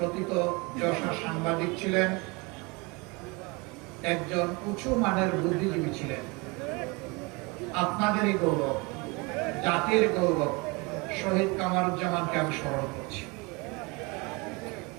যশা সাংবাদিক ছিলেন, একজন উঁচু মানের বুদ্ধিজীবী ছিলেন, আপনাদেরই গৌরব, জাতির গৌরব শহীদ কামারুজ্জামানকে আমি স্মরণ করছি।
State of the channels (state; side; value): quieter; left; 27.5 dB